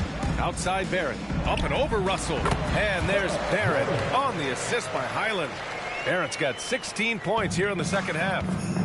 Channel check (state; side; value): identical; both; correlation 1.00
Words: Outside Barrett. Up and over Russell. And there's Barrett on the assist by Highland. Barrett's got 16 points here in the second half.